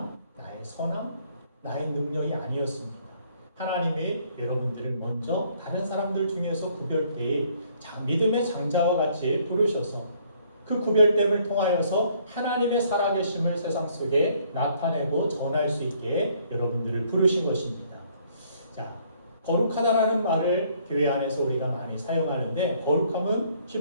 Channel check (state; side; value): inverted; both; correlation -0.64